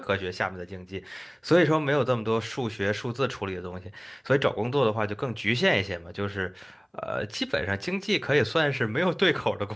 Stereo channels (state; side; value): identical; both; correlation 1.00